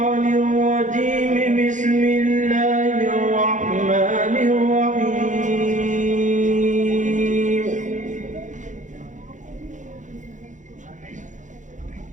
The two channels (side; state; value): left; late; 0.36 ms